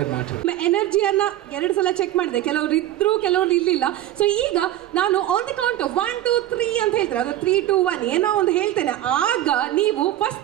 ಎನರ್ಜಿಯನ್ನ 2 ಸಲ ಚೆಕ್ ಮಾಡಿದೆ, ಕೆಲವರು ಇದ್ರು ಕೆಲವರು ಇರ್ಲಿಲ್ಲ. ಸೊ ಈಗ ನಾನು ಆನ್ ದಿ ಕೌಂಟ್ 1 2 3 ಅಂತ ಹೇಳ್ತಾರೆ, ಅದು 3 2 1 ಏನೋ ಒಂದು ಹೇಳ್ತೇನೆ, ಆಗ ನೀವು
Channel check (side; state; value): left; quieter; 13.4 dB